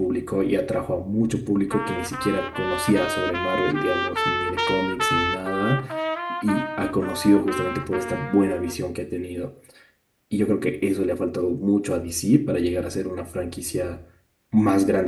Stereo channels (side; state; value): both; identical; correlation 1.00